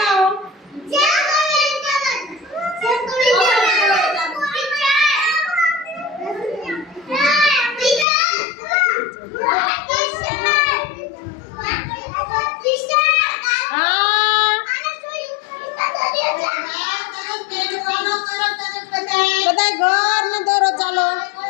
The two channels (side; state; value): right; drops out; at 8.1 s